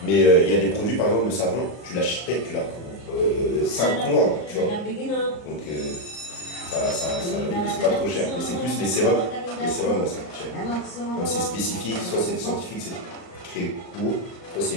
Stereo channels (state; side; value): late; right; 38 ms